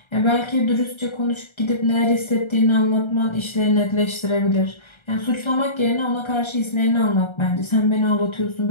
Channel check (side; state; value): right; late; 1.3 ms